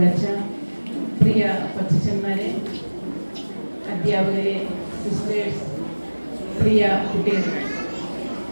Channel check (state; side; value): inverted; both; correlation -1.00